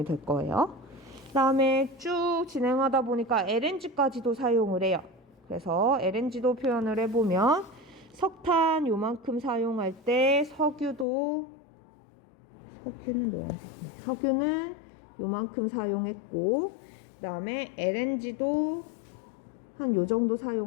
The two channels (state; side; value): drops out; right; at 11.1 s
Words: 될 거예요. 그 다음에 쭉 진행하다 보니까 LNG까지도 사용을 해요. 그래서 LNG도 표현을 해보면 석탄 요만큼 사용할 때 석유는 노란색. 석유는 요만큼 사용했고 그 다음에 LNG도 한 요 정도